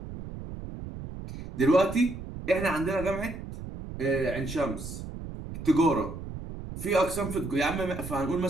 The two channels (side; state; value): right; noise; rumble, 10 dB below the sound